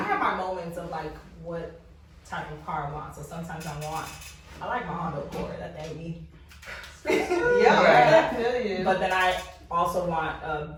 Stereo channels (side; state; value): both; identical; correlation 1.00